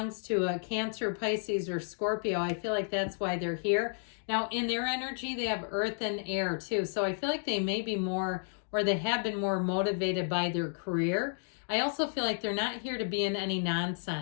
to a Cancer, Pisces, or Scorpio, I feel like that's why they're here. Now, in their energy, they have earth and air too. So I feel like they may be more, or they have been more motivated by their career. I also feel like they're not here to be in any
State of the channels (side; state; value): right; silent; digital silence